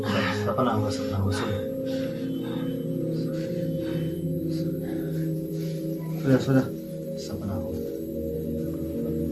सपना हुआ, सपना हुआ। सोचा सपना हुआ।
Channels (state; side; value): identical; both; correlation 1.00